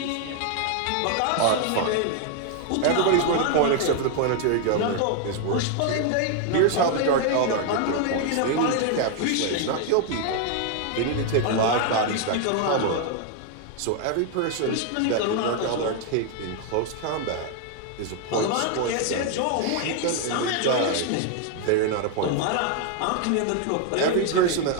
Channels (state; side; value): different; both; correlation 0.00